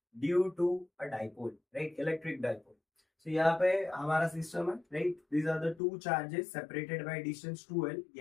due to a dipole, right? Electric dipole. So यहाँ पे हमारा सिस्टम है, right? These are the two charges separated by distance 2L.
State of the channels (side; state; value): right; drops out; at 5.8 s